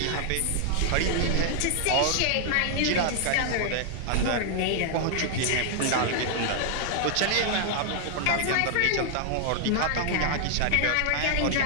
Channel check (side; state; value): both; different; correlation 0.00